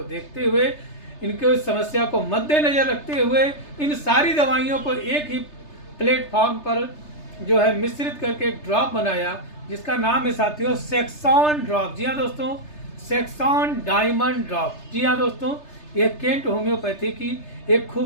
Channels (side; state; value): right; late; 3.3 ms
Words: देखते हुए, इनके समस्या को मद्देनजर रखते हुए इन सारी दवाइयों को एक ही प्लेटफॉर्म पर जो है मिश्रित करके एक ड्रॉप बनाया, जिसका नाम है साथियों सेक्सॉन ड्रॉप। जी हाँ दोस्तों, सेक्सॉन डायमंड ड्रॉप। जी हाँ दोस्तों, यह केंट होम्योपैथी की एक